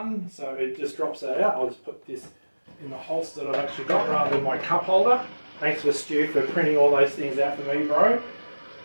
so it just drops that out. I'll just put this in the holster that I've actually got rather than my cup holder. Thanks for Stu for printing all those things out for me, bro.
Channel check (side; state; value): both; inverted; correlation -1.00